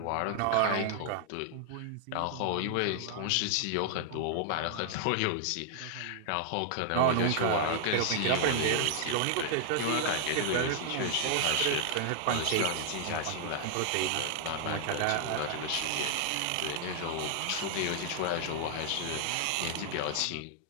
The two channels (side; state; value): both; different; correlation 0.00